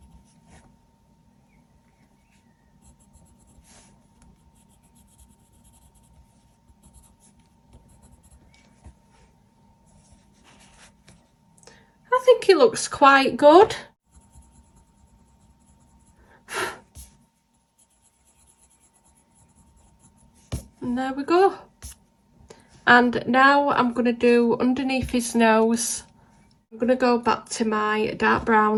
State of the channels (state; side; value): identical; both; correlation 1.00